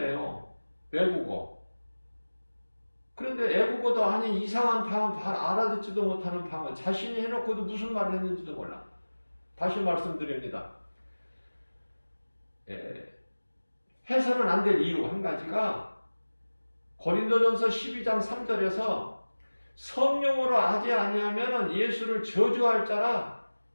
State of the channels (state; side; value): inverted; both; correlation -1.00